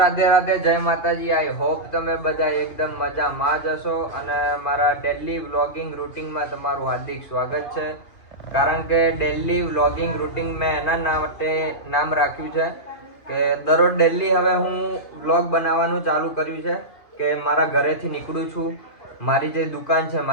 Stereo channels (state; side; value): late; right; 2.5 ms